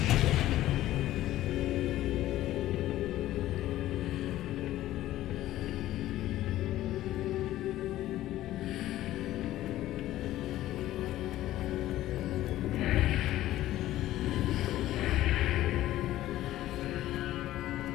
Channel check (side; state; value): right; quieter; 14.5 dB